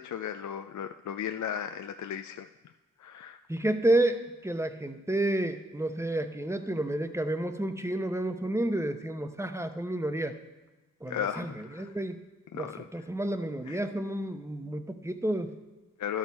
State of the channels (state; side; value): normal; both; correlation 0.74